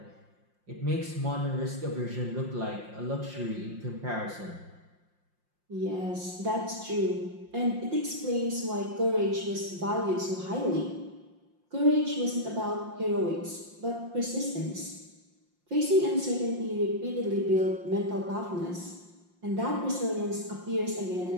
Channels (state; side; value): late; left; 5.7 ms